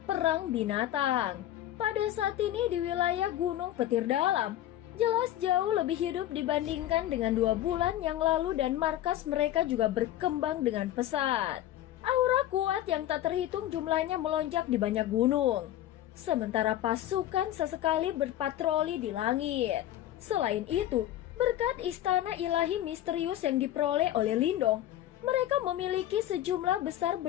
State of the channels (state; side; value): quieter; right; 13.0 dB